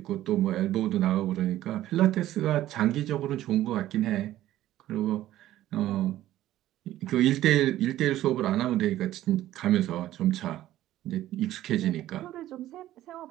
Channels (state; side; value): quieter; left; 14.0 dB